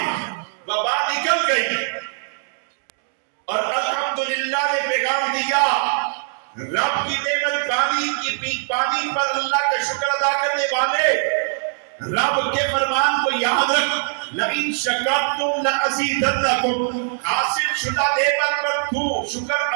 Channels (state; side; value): silent; left; digital silence